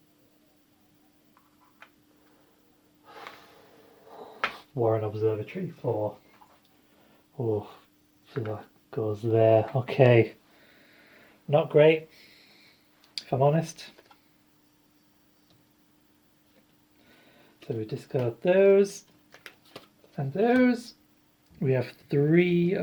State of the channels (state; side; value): identical; both; correlation 1.00